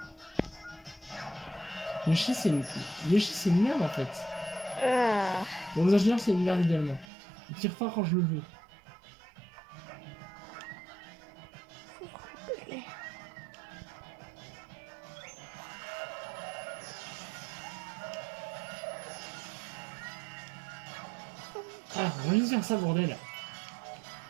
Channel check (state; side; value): drops out; left; at 7.1 s